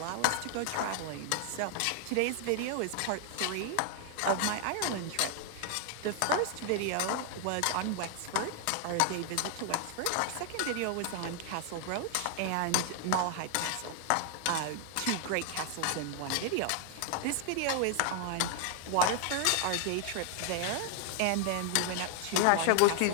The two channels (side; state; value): both; different; correlation 0.00